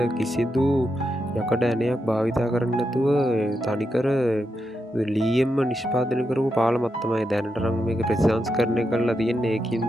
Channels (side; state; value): both; normal; correlation 0.85